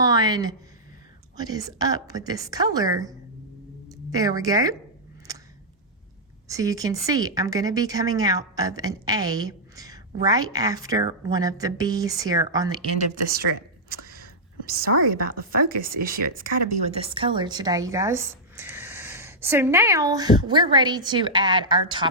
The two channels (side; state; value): both; normal; correlation -0.08